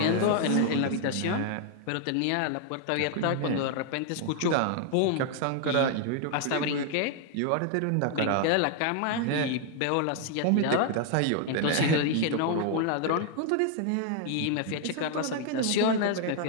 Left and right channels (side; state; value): both; different; correlation 0.00